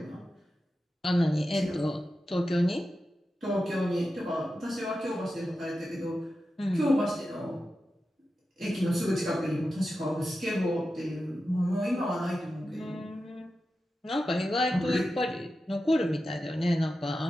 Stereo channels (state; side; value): normal; both; correlation 0.91